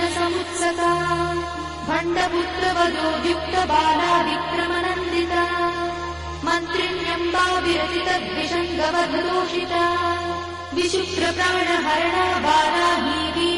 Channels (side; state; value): both; identical; correlation 1.00